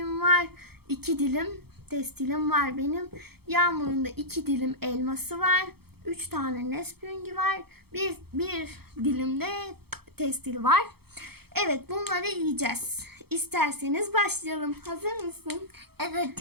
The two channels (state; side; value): late; left; 0.96 ms